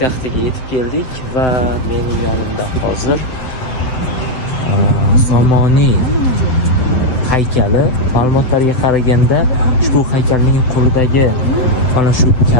yetib keldik va mening yonimda hozir Somoniy haykali. Ma'lumotlarga qaraganda ushbu haykalning qo'lidagi mana shu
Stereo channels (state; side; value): late; right; 7.9 ms